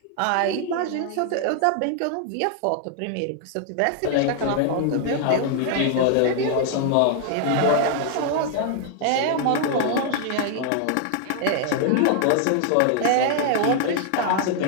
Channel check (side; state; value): both; different; correlation 0.00